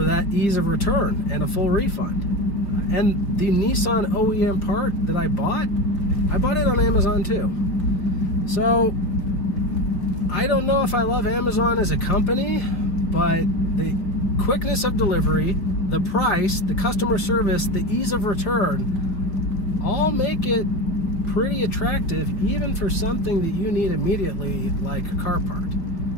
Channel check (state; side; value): late; right; 5.1 ms